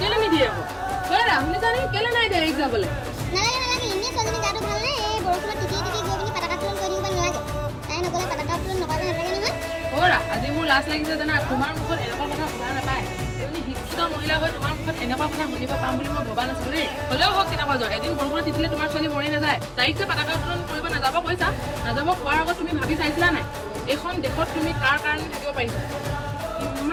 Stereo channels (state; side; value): identical; both; correlation 1.00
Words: নিদিয়ে আকৌ হয় শুনিছা নেকি কেলে নাই দিয়া এক্সাম যাবলৈ নালাগে এনে ছোৱালীজনী গাটো ভাল নাই এই বৰষুণত তিতি গৈ পিনি পতাকা উত্তোলন কৰি দিব নালাগে তাই নগ'লে পতাকা উত্তোলন নকৰিব নালাগে নহয় অ'ৰা আজি মোৰ লাজ লাগিছে জানা তোমাৰ মুখত এনেকুৱা কথা শুনা নাপায় তুমি শিক্ষিত মহিলা হৈ তোমাৰ মুখত এনেকুৱা কথা শুনিব পাম বুলি মই ভবা নাছিলো দেই হ'লেও হওক কেনেকুৱা যোৱা এদিন বৰষুণত তিতিলে তোমাৰ ছোৱালী মৰি নাযায় তাইক যে পতাকা উত্তোলন কৰিব নাযাব কৈছা নাযাব কোৱাৰ আগত তুমি ভাবি চাইছিলা নাই এইখন দেশত তুমি কাৰ কাৰণে থাকিব পাৰিছা